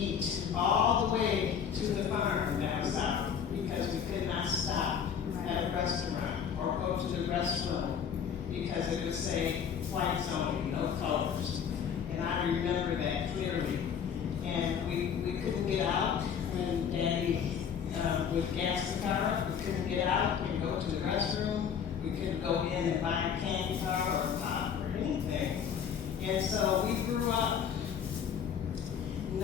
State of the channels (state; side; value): quieter; right; 7.7 dB